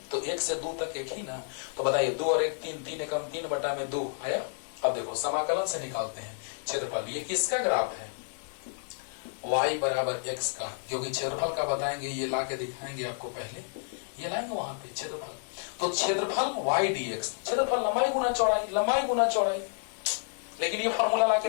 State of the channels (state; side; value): silent; right; digital silence